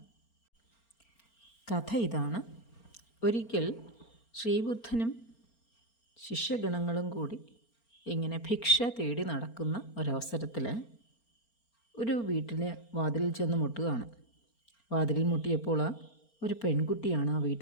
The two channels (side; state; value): right; late; 4.4 ms